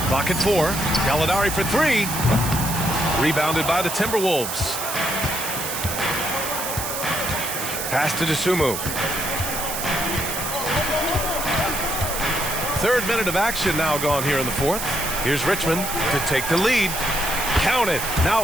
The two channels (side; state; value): right; noise; hiss, 4 dB below the sound